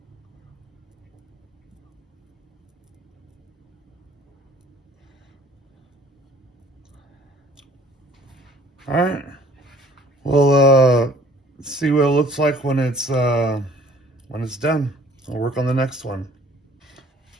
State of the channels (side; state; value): both; normal; correlation 0.55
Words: All right. Well, see what it looks like when it's done. I'll work on the next one.